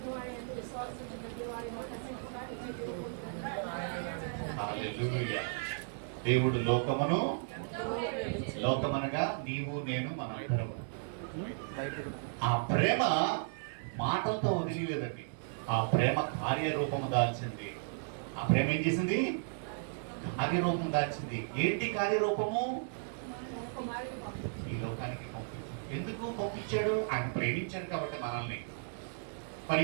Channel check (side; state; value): left; silent; digital silence